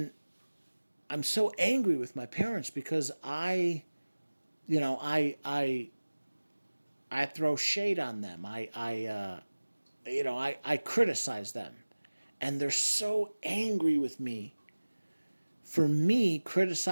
I'm so angry with my parents because I throw shade on them. I criticize them, and they're so angry with me for me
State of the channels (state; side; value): inverted; both; correlation -1.00